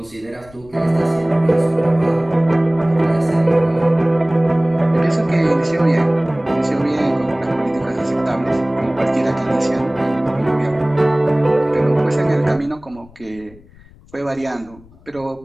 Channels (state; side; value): noise; left; rumble, 25 dB below the sound